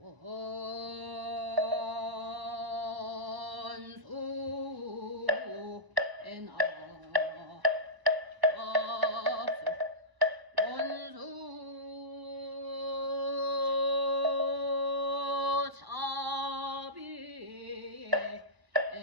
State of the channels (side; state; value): left; late; 1.1 ms